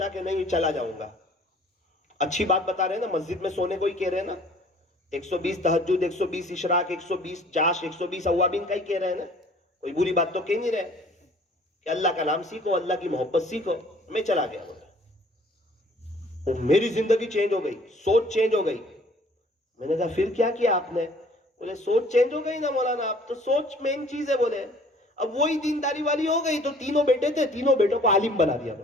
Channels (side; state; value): both; normal; correlation 0.54